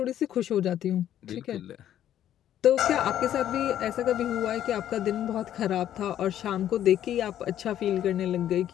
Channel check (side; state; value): right; quieter; 11.3 dB